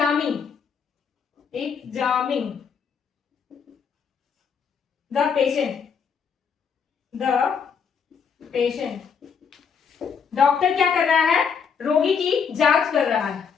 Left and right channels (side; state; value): right; quieter; 6.5 dB